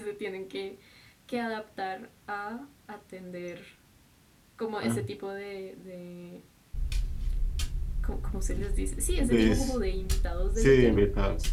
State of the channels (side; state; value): both; identical; correlation 1.00